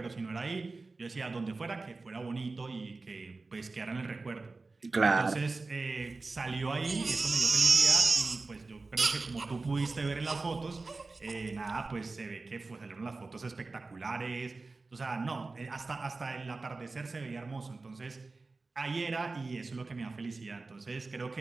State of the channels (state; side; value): quieter; left; 3.6 dB